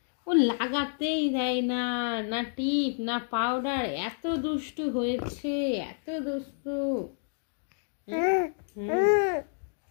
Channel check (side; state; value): right; silent; digital silence